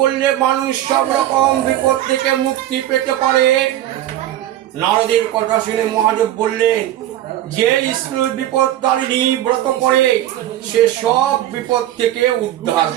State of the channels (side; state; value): left; quieter; 13.1 dB